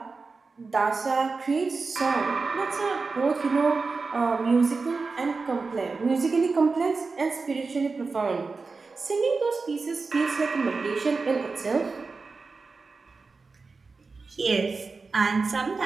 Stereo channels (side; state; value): left; quieter; 4.2 dB